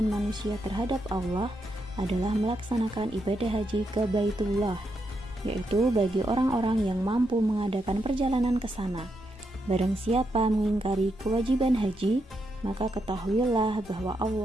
manusia terhadap Allah adalah melaksanakan ibadah haji ke Baitullah, yaitu bagi orang-orang yang mampu mengadakan perjalanan ke sana. Barang siapa mengingkari kewajiban haji, maka ketahuilah bahwa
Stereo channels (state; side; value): normal; both; correlation 0.82